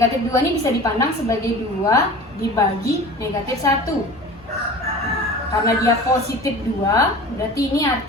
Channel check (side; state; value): both; normal; correlation 0.38